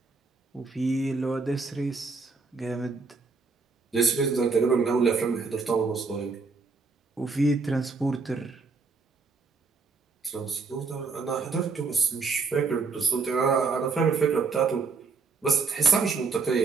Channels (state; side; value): quieter; left; 4.6 dB